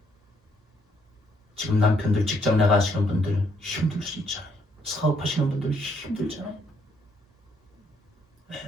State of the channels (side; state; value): both; normal; correlation 0.71